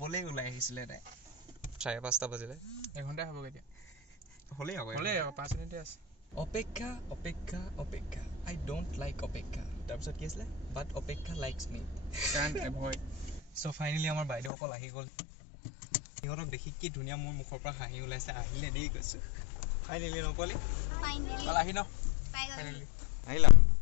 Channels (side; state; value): right; drops out; at 14.5 s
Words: ওলাই আহিছিলে তাই 5:30 বাজিলে এঘণ্টাই হ'ব কেতিয়া হ'লেই আকৌ 5 মিনিটে আছে অপেক্ষা আই ডোণ্ট লাইক অপেক্ষা তাৰপিছত কি আছিলে বাট অপেক্ষা লাইকছ মি চ' ফাইনেলি আমাৰ বাইদেউসকল আহি গ'ল সিহঁতক দেখি কি ধুনীয়া মোৰ মুখৰ পৰা হাঁহি ওলাইছে আহিলে দেই কৈছোঁ ফাইনেলি নকলি আহি ন আহিলা